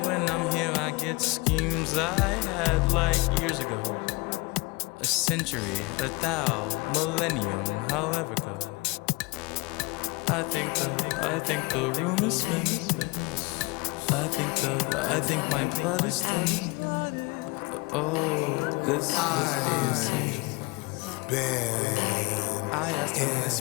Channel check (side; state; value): right; quieter; 25.7 dB